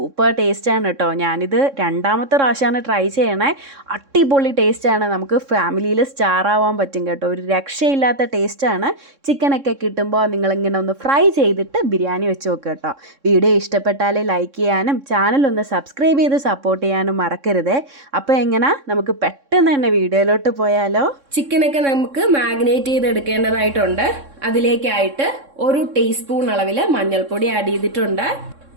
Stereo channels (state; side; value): late; left; 3.6 ms